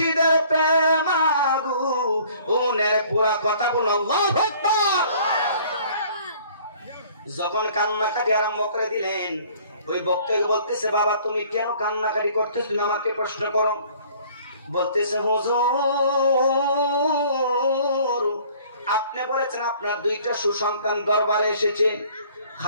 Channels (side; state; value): both; inverted; correlation -0.54